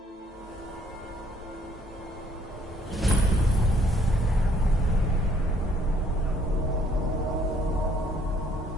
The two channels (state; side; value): normal; both; correlation 0.64